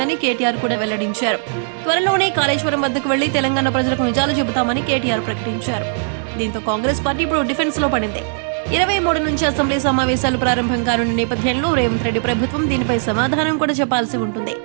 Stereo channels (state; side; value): silent; left; digital silence